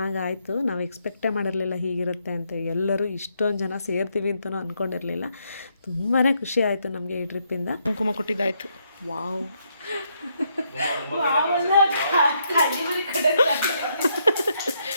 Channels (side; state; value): both; inverted; correlation -0.76